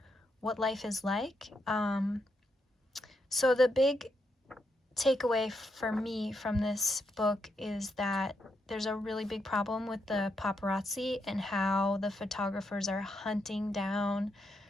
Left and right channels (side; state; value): both; normal; correlation 0.80